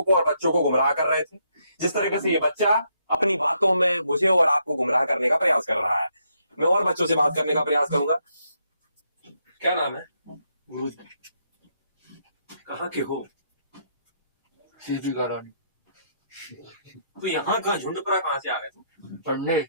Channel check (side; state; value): both; inverted; correlation -0.75